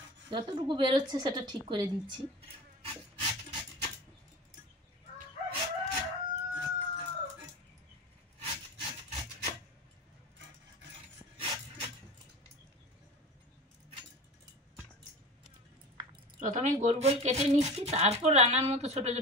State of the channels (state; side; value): normal; both; correlation 0.33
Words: যতটুকু বেরোচ্ছে সেটা ঠিক করে দিচ্ছি। প্রথমে গোল গোল কেটে নিচ্ছি, তারপর রান্নার মতো ছোট